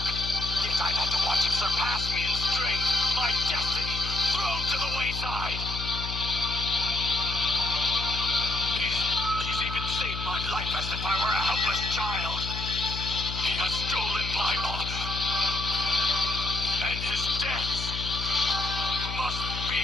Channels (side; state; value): left; noise; hum, 6 dB below the sound